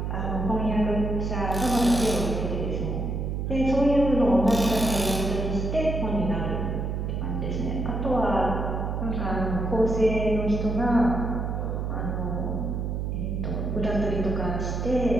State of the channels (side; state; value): right; noise; hum, 2 dB below the sound